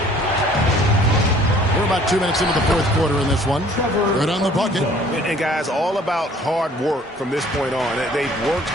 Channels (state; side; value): normal; both; correlation 0.55